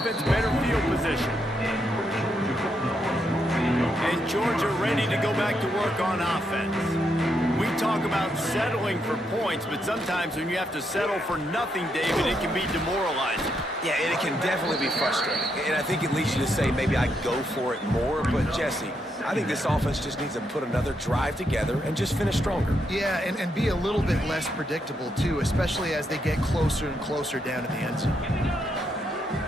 better field position. And Georgia ready to go back to work on offense. We talk about settling for points, but sometimes when you have to settle for nothing, David, it can be demoralizing. Yeah, and it can definitely be frustrating. And I think it leads you to say maybe I go for it more. But, Jesse, I think this offense just needs to put another drive together and just finish stronger. Yeah, and be a little bit less predictable, too, especially as they get closer and closer down to the end zone.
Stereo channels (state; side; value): normal; both; correlation 0.79